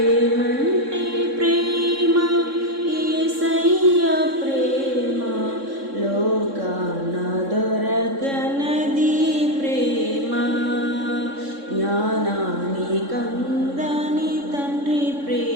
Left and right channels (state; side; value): late; left; 3.6 ms